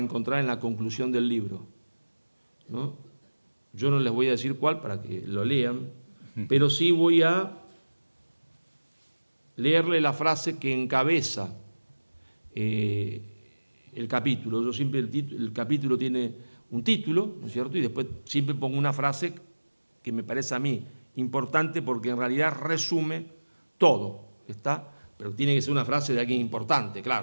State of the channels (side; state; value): both; inverted; correlation -1.00